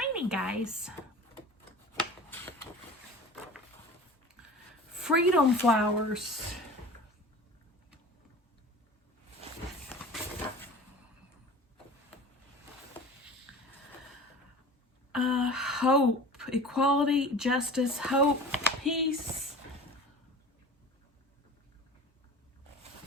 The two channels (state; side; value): normal; both; correlation 0.38